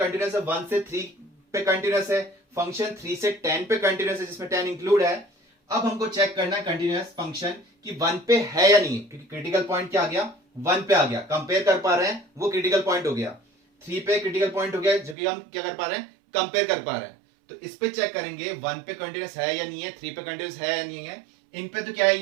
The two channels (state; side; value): drops out; left; at 15.2 s